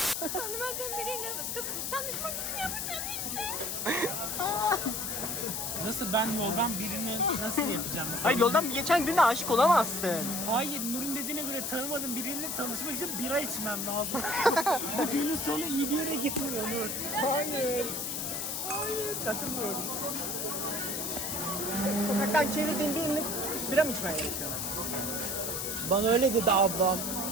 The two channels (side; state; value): left; noise; hiss, 2 dB below the sound